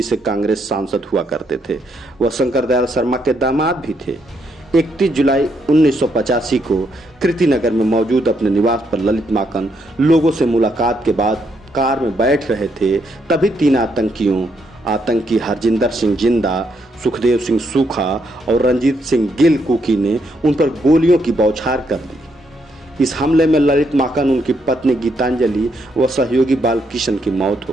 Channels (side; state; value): both; normal; correlation 0.76